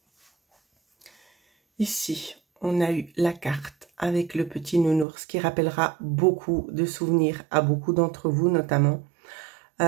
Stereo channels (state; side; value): drops out; left; at 5.1 s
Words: Ici, on a eu la carte avec le petit nounours qui rappellera beaucoup de souvenirs à beaucoup d'entre vous, notamment.